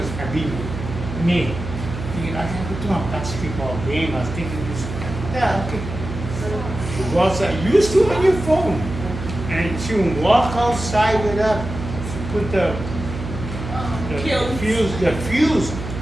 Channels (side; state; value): right; noise; hum, 7 dB below the sound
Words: I mean, me, thinking, I have to do a basketball game. I was thinking this, yeah, okay. You go outside, you used to on your phone. And she would walk outside with her, she put the fuse.